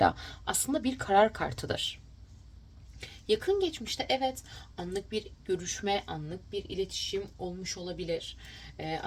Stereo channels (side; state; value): both; identical; correlation 1.00